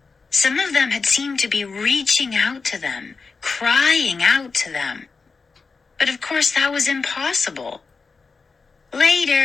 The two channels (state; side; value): quieter; right; 4.6 dB